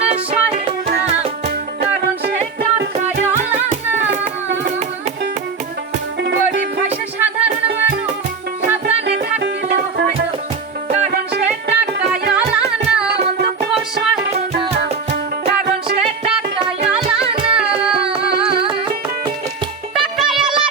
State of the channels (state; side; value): quieter; left; 5.1 dB